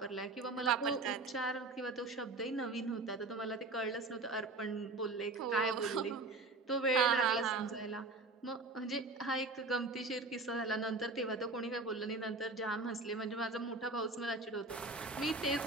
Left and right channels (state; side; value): quieter; left; 3.3 dB